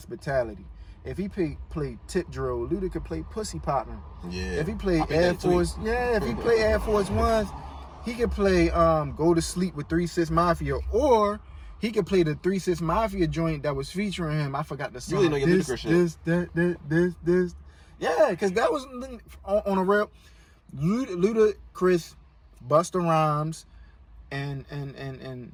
If he play tip drill, Luda could play pussy popping. Yeah. If he play Air Force, if he play Air Force Ones, he could play Go to Sleep with 3 6 Mafia, or he could play the 3 6 Mafia joint that was featuring him. I forgot the song. You really know your Ludacris shit. This. Yeah, because that was on a real Ludacris, Busta Rhymes, and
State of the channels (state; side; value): identical; both; correlation 1.00